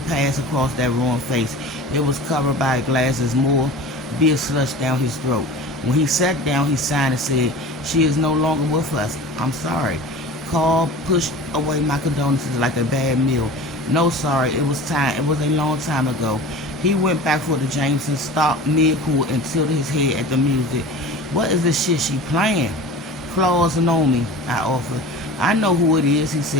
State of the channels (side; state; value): both; normal; correlation 0.36